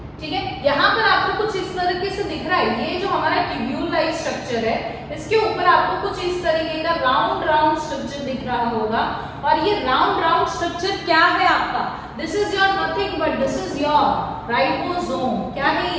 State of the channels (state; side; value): identical; both; correlation 1.00